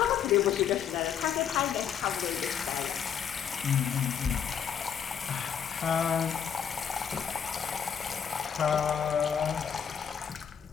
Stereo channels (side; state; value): right; quieter; 8.1 dB